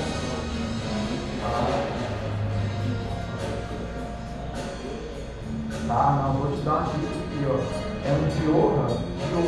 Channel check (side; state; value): both; identical; correlation 1.00